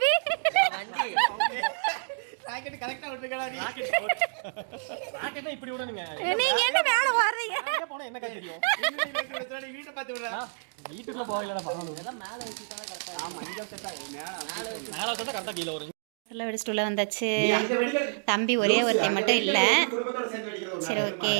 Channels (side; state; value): left; silent; digital silence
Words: வண்டி. ராக்கெட் கரெக்ட்டா விட்டுக்கடா நீ. ராக்கெட்னா இப்படி விடணுங்க. நீங்க என்ன மேல வர்றீங்க? எங்க போனா என்ன தெரியும்? நீ வீட்டை பார்த்து விடுறா. வீட்டுக்குள்ள போகலடா பாக்கணும். எல்லாம் மேல வச்சுட்டா கரெக்டா. ஆமா இங்க செட்டா மேல வச்சா கரெக்டா கீழ வரும். சொல்ல வெடிச்சிட்டு உள்ள வந்தாச்சு. தம்பி ஒரே ஒருத்தி மட்டும் இல்லை. சரி ஓகே.